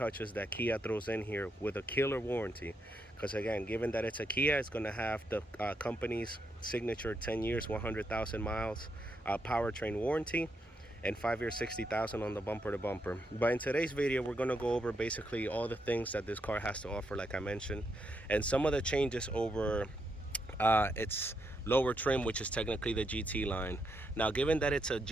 that Kia throws in here with a killer warranty. Because again, given that it's a Kia, it's going to have the company's signature 10 years 100,000 miles powertrain warranty and 5 years 60,000 on the bumper to bumper. But in today's video we're going to go over basically all the things that this car has to offer, like I mentioned, and some of the changes over its lower trim, which is technically the GT line. Now, given that it's a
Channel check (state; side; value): normal; both; correlation 0.80